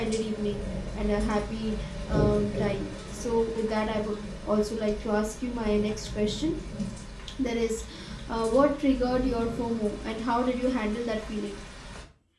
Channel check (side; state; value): both; identical; correlation 1.00